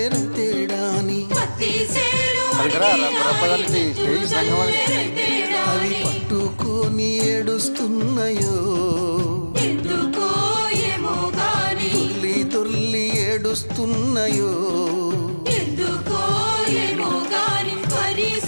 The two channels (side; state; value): both; inverted; correlation -1.00